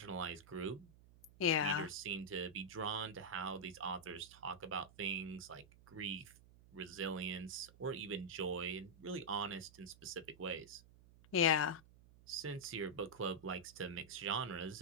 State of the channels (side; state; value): right; noise; hum, 22 dB below the sound